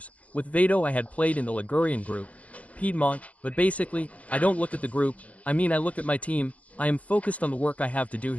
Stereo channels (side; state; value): right; late; 0.067 ms